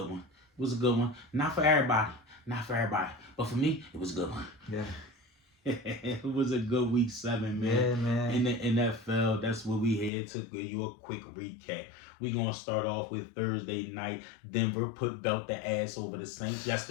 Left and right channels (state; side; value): drops out; right; at 10.1 s